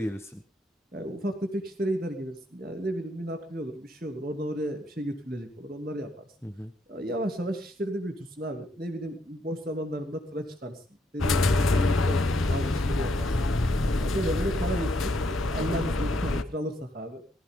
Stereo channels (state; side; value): normal; both; correlation 0.74